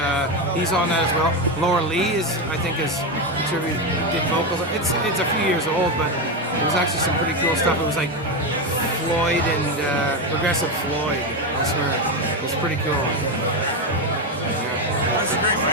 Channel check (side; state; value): both; normal; correlation 0.12